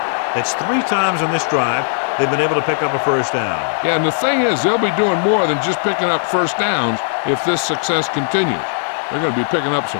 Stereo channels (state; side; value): silent; right; digital silence